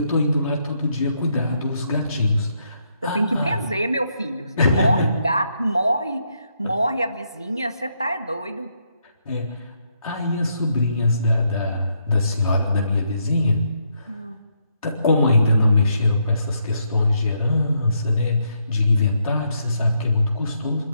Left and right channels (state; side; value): inverted; both; correlation -0.77